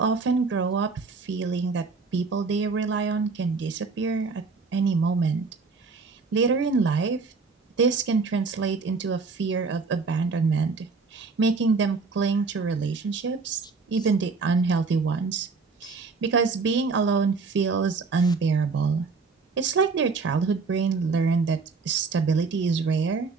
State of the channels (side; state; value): left; quieter; 4.5 dB